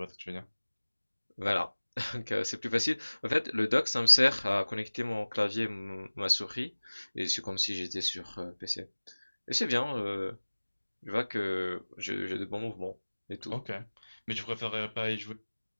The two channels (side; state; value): both; inverted; correlation -1.00